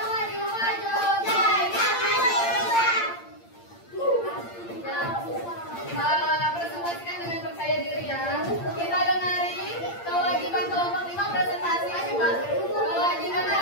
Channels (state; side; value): late; right; 8.7 ms